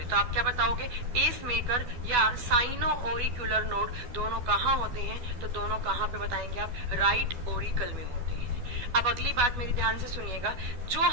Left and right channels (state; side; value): late; left; 12 ms